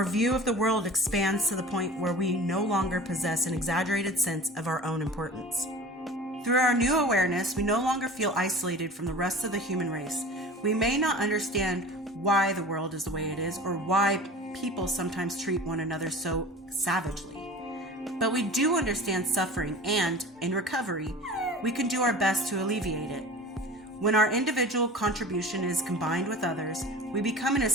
view of the world expands to the point where we no longer possess an exaggerated sense of our own importance. Through our new awareness, we no longer feel isolated from the rest of the human race. We may not understand why the world is the way it is or why people sometimes treat one another so savagely. But we do understand suffering and, in recovery, we can do our best to alleviate it. When our individual contribution is combined with others, we become an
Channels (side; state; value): both; normal; correlation 0.38